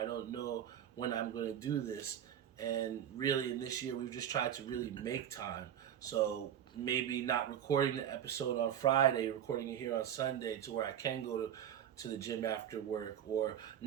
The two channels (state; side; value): quieter; left; 9.9 dB